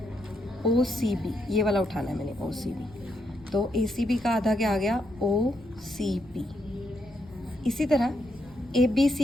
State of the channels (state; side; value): noise; left; rumble, 22 dB below the sound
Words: ओ सी बी, ये वाला उठाना है मैंने, ओ सी बी। तो ए सी बी का आधा क्या आ गया, ओ सी बी। इसी तरह ए बी